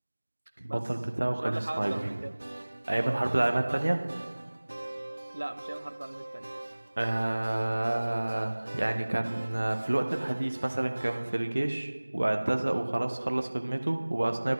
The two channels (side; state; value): both; inverted; correlation -1.00